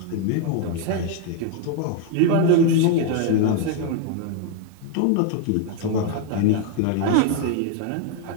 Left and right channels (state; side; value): different; both; correlation 0.01